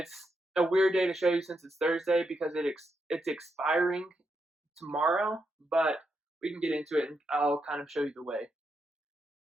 a weird day to show you since it's Thursday because it's expiring tomorrow, but we can get into it and I'll kind of show you the way.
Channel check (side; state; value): both; normal; correlation 0.83